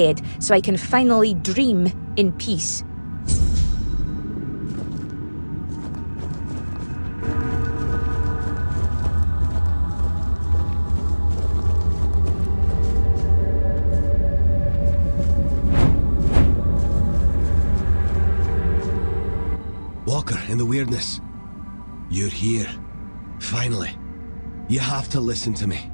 so I can finally dream in peace. Walker in the Wyrdness. You're here. Finally. You have to listen to me.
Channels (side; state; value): both; inverted; correlation -1.00